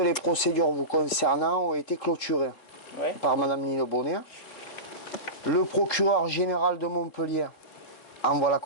procédures vous concernant ont été clôturées par madame Nino Bonnet. Le procureur général de Montpellier envoie la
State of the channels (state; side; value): late; right; 3.8 ms